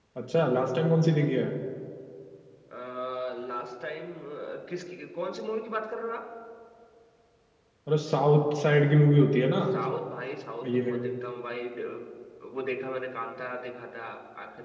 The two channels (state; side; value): identical; both; correlation 1.00